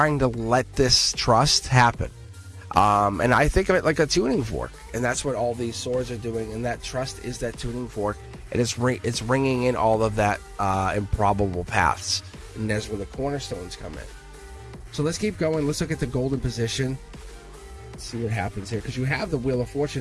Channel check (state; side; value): identical; both; correlation 1.00